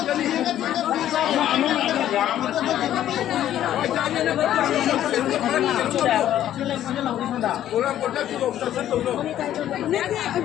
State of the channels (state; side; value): quieter; right; 11.8 dB